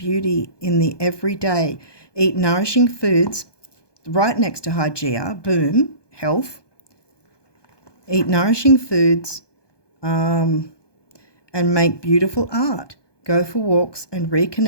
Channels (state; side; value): late; right; 1.2 ms